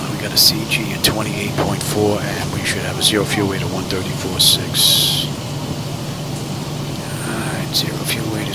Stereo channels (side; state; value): both; identical; correlation 1.00